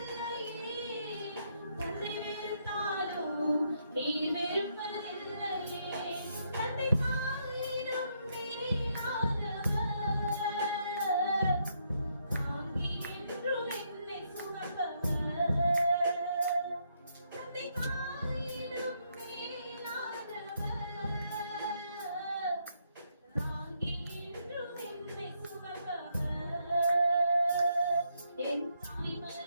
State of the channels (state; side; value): inverted; both; correlation -0.76